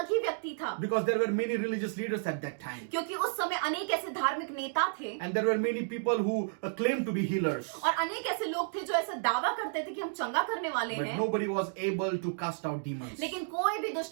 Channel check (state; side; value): silent; left; digital silence